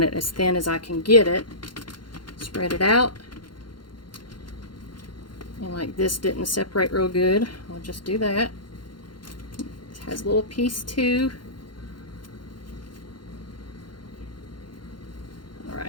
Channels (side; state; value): right; late; 0.71 ms